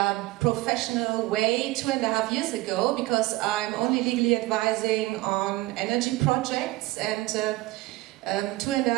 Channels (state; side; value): quieter; left; 19.2 dB